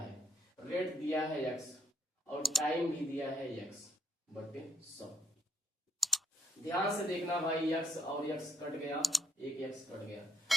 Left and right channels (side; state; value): both; normal; correlation 0.72